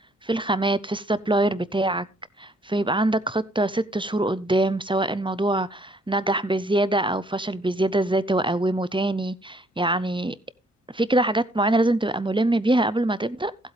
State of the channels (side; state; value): both; normal; correlation 0.65